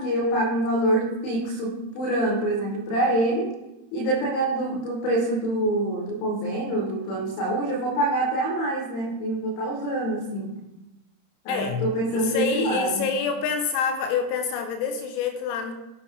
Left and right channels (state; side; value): late; right; 31 ms